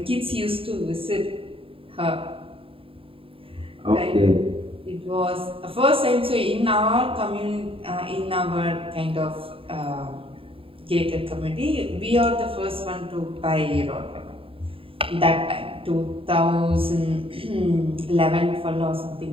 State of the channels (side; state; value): left; late; 0.27 ms